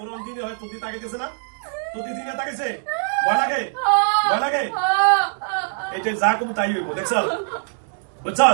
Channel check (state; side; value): silent; left; digital silence